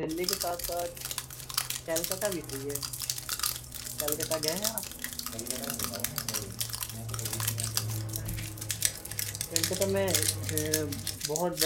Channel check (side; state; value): both; identical; correlation 1.00